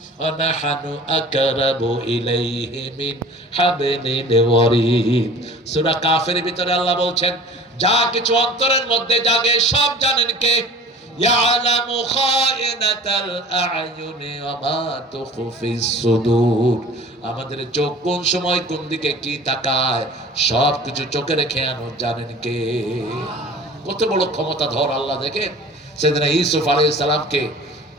ওয়া নাহনু আকরাবু ইলাইহি মিন হাবলিল ওয়ারিদ। সূরা কাফের ভিতরে আল্লাহ বলছেন, যা কিছু অন্তরের মধ্যে জাগে সব জানেন কে? ইয়ালামু খায়িনাতাল আ'য়ুনি ওয়া মা তুখফিস সুদূর। আমাদের চোখ কোন সময় কোন দিকে কি তাকায় সব কিছু চোখে রেখে জানেন কে? কত বড় ক্ষমতা ধর আল্লাহ। দেখেন সেদিন ইউসুফ আলাইহিস সালামকে,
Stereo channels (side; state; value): both; normal; correlation 0.43